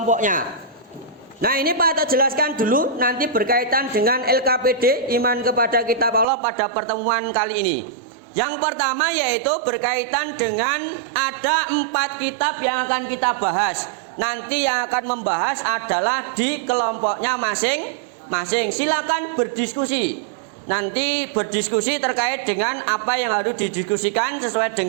Nah ini Pak Ato jelaskan dulu nanti berkaitan dengan LKPD, iman kepada kitab Allah, pada pertemuan kali ini. Yang pertama yaitu berkaitan dengan ada 4 kitab yang akan kita bahas. Nanti yang akan membahas adalah di kelompoknya masing-masing. Silakan berdiskusi. Nanti berdiskusi terkait dengan apa yang harus didiskusikan sesuai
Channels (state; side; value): drops out; left; at 6.2 s